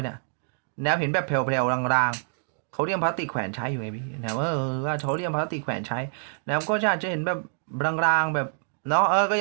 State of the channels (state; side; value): silent; left; 61 dB below the other